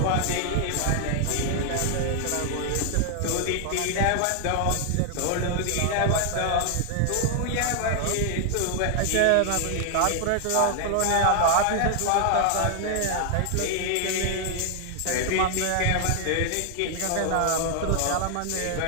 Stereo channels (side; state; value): both; different; correlation 0.00